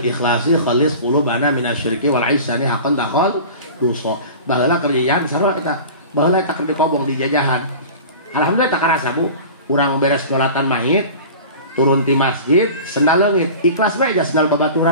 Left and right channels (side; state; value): both; inverted; correlation -0.37